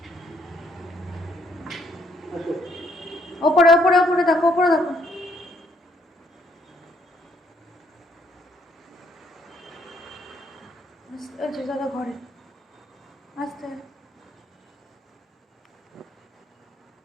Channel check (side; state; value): both; normal; correlation 0.69